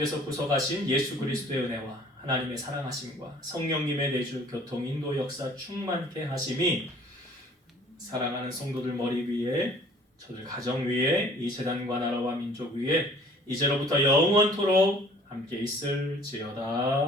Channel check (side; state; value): both; normal; correlation 0.53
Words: 구속하신 예수 그리스도의 은혜와 하나님의 사랑하심과 성령님의 내주 교통 인도 역사 충만케 하심이 사랑하는 성도들 머리 위에, 저들 가정 위에, 이 재단과 나라와 민족 위에 이제로부터 영원토록 함께